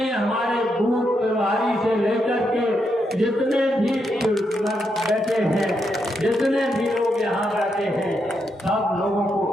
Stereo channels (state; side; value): normal; both; correlation 0.81